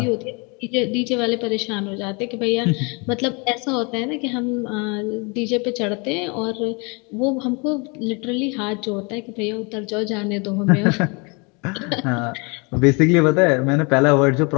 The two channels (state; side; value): quieter; right; 31.0 dB